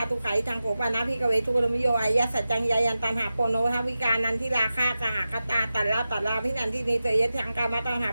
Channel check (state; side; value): inverted; both; correlation -0.94